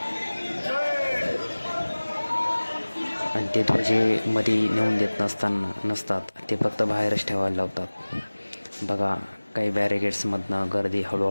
आणि ते ध्वजे मध्ये नेऊन देत नसतात, ते फक्त बाहेरच ठेवायला लावतात. बघा, काही बॅरिगेट्समधनं गर्दी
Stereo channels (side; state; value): both; inverted; correlation -1.00